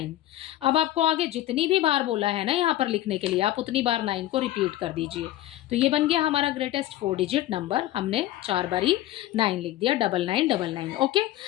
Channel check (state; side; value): quieter; right; 14.5 dB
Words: अब आपको आगे जितनी भी बार बोला है ना यहाँ पर लिखने के लिए, आप उतनी बार 9 को रिपीट कर दीजिए। तो ये बन गया हमारा ग्रेटेस्ट 4 डिजिट नंबर। हमने 4 बारी 9 लिख दिया, 9999। ओके,